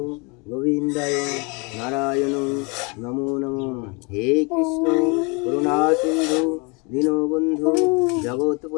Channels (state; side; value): quieter; right; 30.6 dB